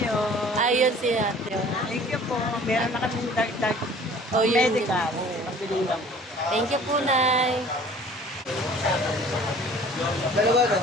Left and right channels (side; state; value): both; normal; correlation 0.49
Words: Ayun si Ate. Thank you po. Meron na kami dagdag Oh, yun. medical. Pagbiling lang. Thank you po, Nay. Dalawa no?